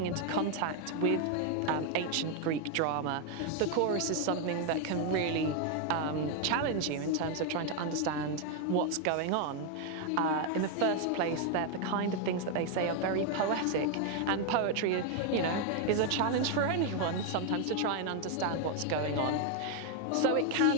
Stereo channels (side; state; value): both; different; correlation 0.01